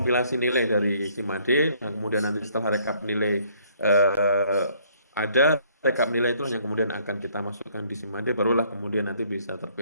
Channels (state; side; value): inverted; both; correlation -0.64